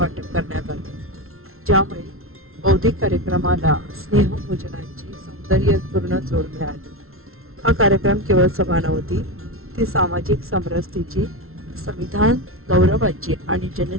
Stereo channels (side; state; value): left; late; 0.62 ms